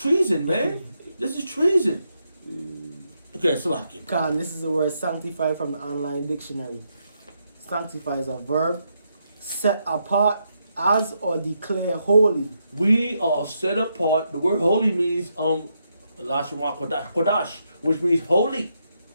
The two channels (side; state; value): both; inverted; correlation -0.80